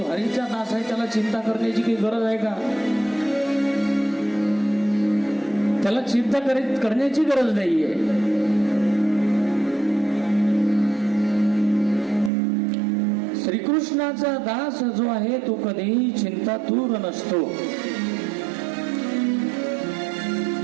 हरीचा दास आहे त्याला चिंता करण्याची काही गरज आहे का? त्याला चिंता करण्याची गरज नाहीये. श्रीकृष्णाचा दास जो आहे तो कधीही चिंतातूर नसतो.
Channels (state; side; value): drops out; left; at 12.3 s